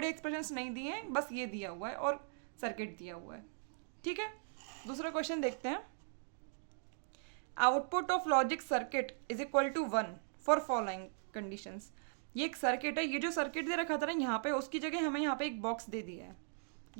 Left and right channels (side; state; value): left; silent; digital silence